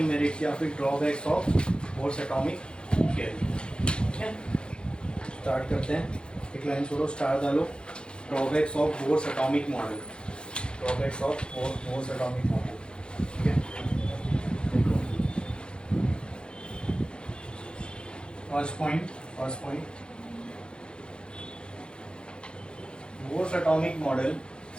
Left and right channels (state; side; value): late; right; 0.052 ms